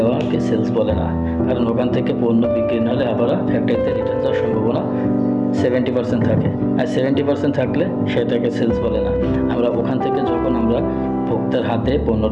সেলস বলে না, কারণ ওখান থেকে পণ্য বিক্রি না হলে আবার ফ্যাক্টরিতে রিটার্ন যাওয়ার সম্ভাবনা 70% থাকে, আর 70% থাকলে সেটাকে সেলস বলে না। আমরা ওখান থেকে যখন আমরা ভোক্তার হাতে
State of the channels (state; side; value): identical; both; correlation 1.00